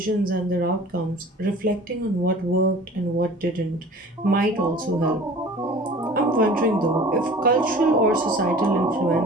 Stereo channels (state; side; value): normal; both; correlation 0.44